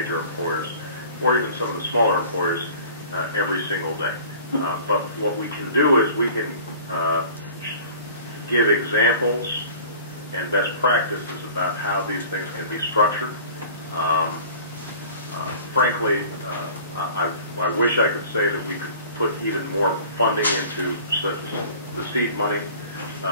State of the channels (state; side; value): inverted; both; correlation -0.45